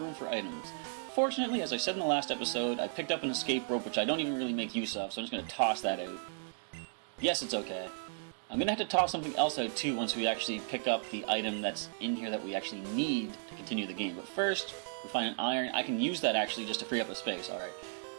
room for items. Fortunately, as I said in the last episode, I picked up an escape rope, which I don't even really make use of, so I'm just going to toss that out. Yes, it's okay. I'm going to have to toss something else out too once we actually pick up the item that's in here that we actually need to continue the game. But first, we find an iron. I can use that actually just to free up a space, alright.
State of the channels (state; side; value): silent; left; digital silence